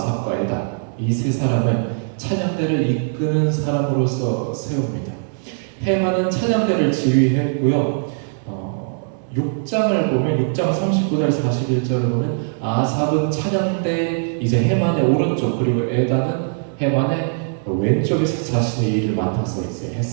에단 이 세 사람을 찬양대를 이끄는 사람으로서 세웁니다. 헤만은 찬양대를 지휘했고요. 6장을 보면 6장 39절 41절을 보면 아삽은 찬양대 이제 헤만의 오른쪽 그리고 에단은 헤만의 왼쪽에서 자신의 일을 맡아서 이제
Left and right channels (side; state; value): left; silent; digital silence